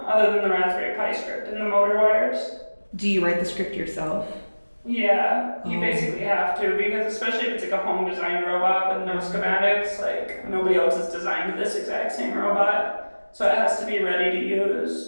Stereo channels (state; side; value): inverted; both; correlation -1.00